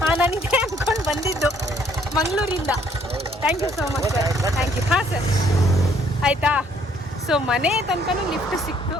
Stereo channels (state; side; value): normal; both; correlation 0.64